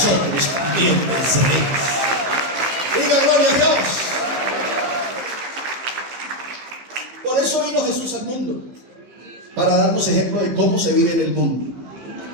también venceréis. Diga gloria a Dios. Por eso vino Jesús al mundo, para darnos ejemplo de cómo se vive en el mundo.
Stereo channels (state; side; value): late; left; 15 ms